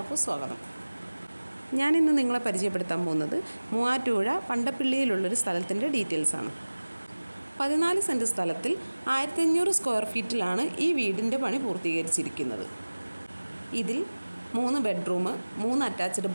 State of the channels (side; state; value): both; inverted; correlation -1.00